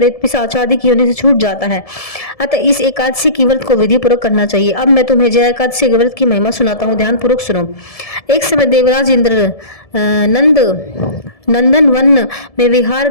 पिशाच आदि की होने से छूट जाता है। अतः इस एकादशी की व्रत को विधि पूर्वक करना चाहिए। अब मैं तुम्हें जय एकादशी के व्रत की महिमा सुनाता हूँ, ध्यान पूर्वक सुनो। एक समय देवराज इंद्र नंदन वन में विहार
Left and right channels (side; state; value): right; late; 1.7 ms